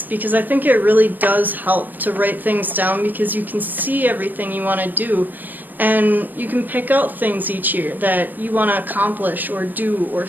because I think it really does help to write things down, because you can see everything you want to do and you can pick out things each year that you want to accomplish or do or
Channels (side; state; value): left; late; 0.089 ms